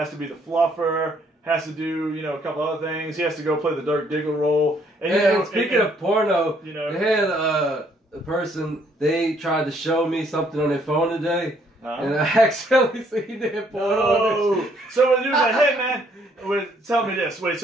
to be the fluffer, has to do, a couple other things. He has to go play the Dirk Diggler role. And speaking of porno, they had a person, they tried to show me something on their phone today. And I accidentally seen that porno. Oh, so he was like, "Hey man, tell me this." Wait,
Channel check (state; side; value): normal; both; correlation 0.66